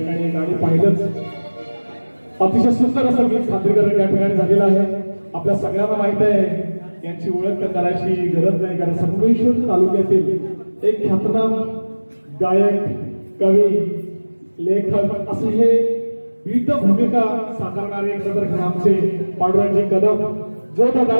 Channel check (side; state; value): both; inverted; correlation -1.00